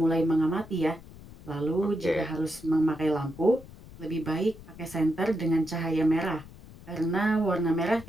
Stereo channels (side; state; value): left; noise; rumble, 19 dB below the sound